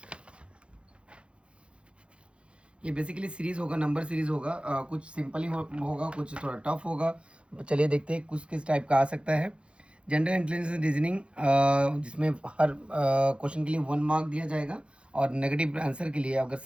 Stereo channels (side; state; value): left; late; 0.058 ms